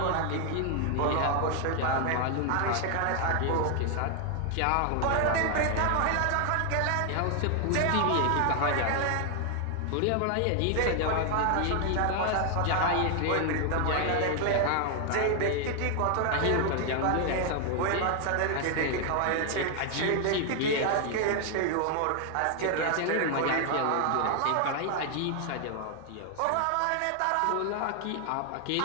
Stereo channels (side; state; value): both; different; correlation 0.00